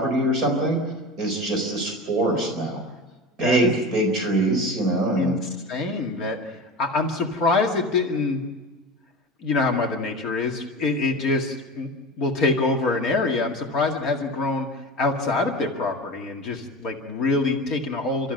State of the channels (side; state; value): both; normal; correlation 0.30